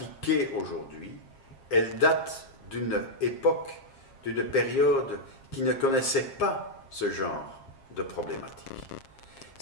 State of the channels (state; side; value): late; right; 7.4 ms